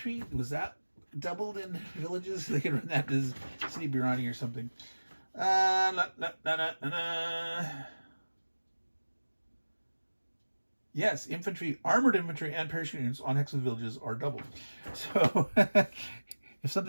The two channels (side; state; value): both; inverted; correlation -1.00